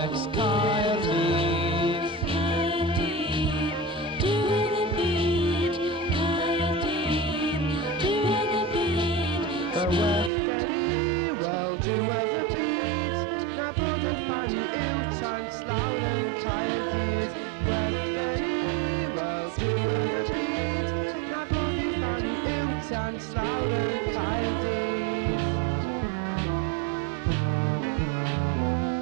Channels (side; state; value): left; drops out; at 10.3 s